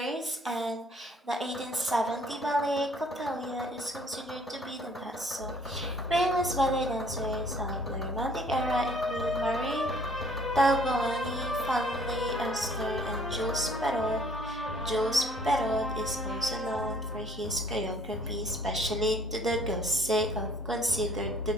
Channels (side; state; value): both; normal; correlation 0.59